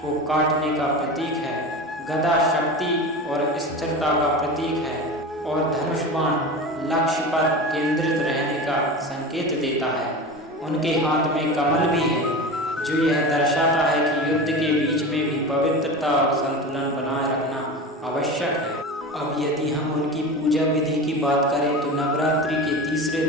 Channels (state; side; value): normal; both; correlation 0.29